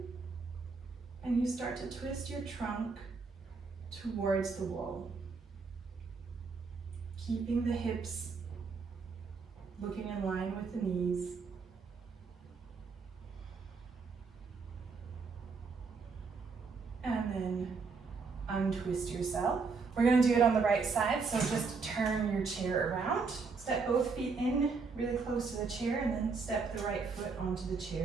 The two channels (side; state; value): left; quieter; 4.8 dB